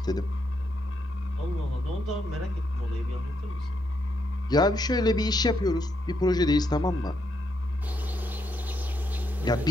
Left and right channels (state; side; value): normal; both; correlation 0.78